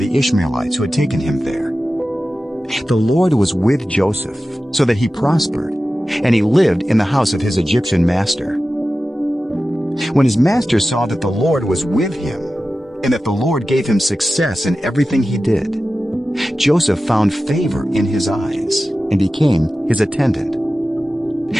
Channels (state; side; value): normal; both; correlation 0.94